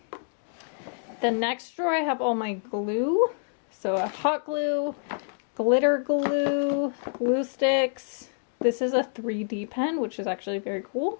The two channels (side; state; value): right; silent; digital silence